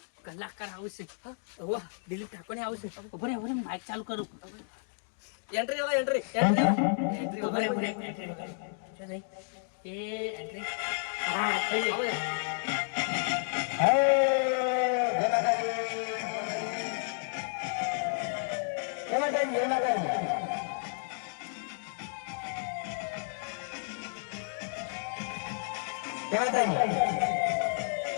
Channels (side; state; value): right; silent; digital silence